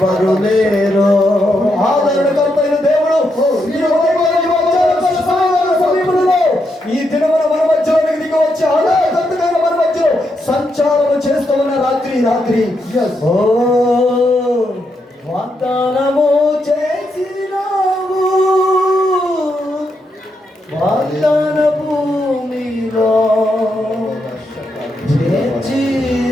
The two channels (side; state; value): both; normal; correlation 0.81